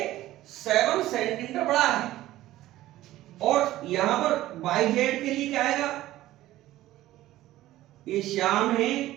7 सेंटीमीटर बड़ा है, और यहां पर yz के लिए क्या आएगा, ये श्याम है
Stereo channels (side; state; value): left; quieter; 15.3 dB